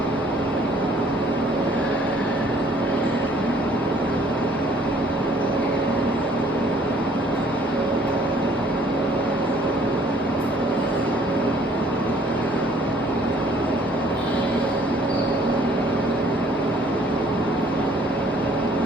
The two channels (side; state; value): both; normal; correlation 0.59